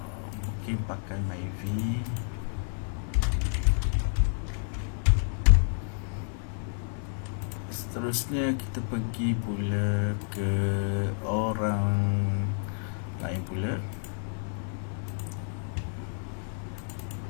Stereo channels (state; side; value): silent; right; 58 dB below the other